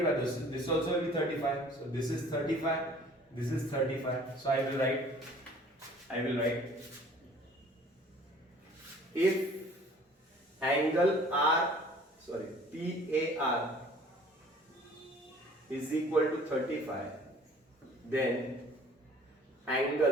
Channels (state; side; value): normal; both; correlation 0.52